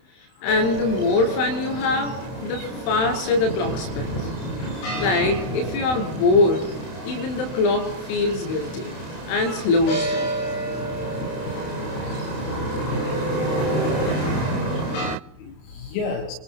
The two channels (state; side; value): late; right; 31 ms